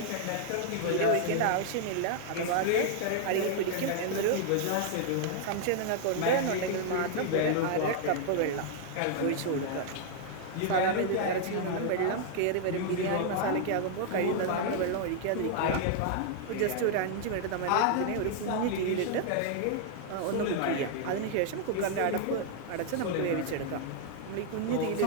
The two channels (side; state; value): both; different; correlation 0.00